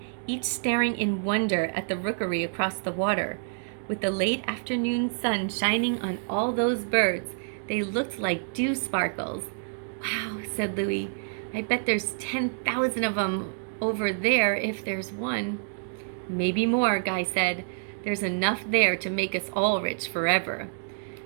each staring in wonder at the rookery across the water. With the late afternoon sun shining on all those birds, they looked like dew sparkles. Wow, said Louie. I bet there's 10,000 of them over there if there's one. Maybe more, Guy said. There's enough there to make us all rich forever.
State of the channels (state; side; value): silent; left; digital silence